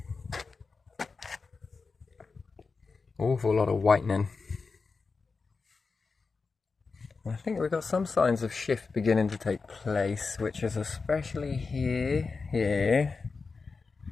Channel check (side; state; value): right; quieter; 4.5 dB